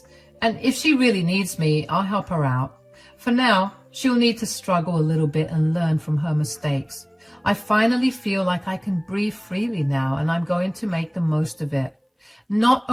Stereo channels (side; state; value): both; identical; correlation 1.00